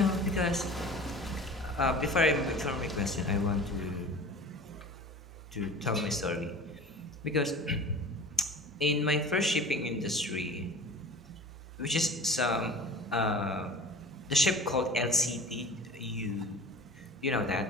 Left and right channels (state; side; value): normal; both; correlation 0.39